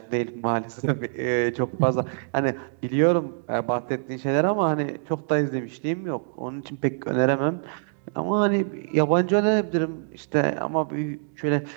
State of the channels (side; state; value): left; silent; digital silence